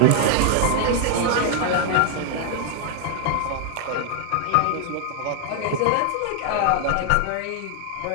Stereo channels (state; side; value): different; both; correlation 0.00